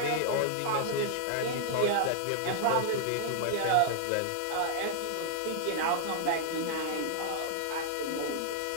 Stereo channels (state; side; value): different; both; correlation -0.01